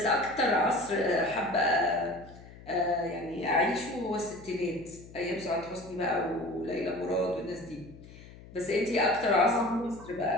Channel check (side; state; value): left; noise; hum, 19 dB below the sound